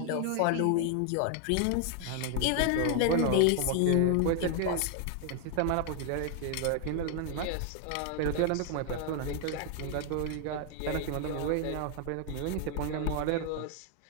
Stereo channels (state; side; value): different; both; correlation 0.00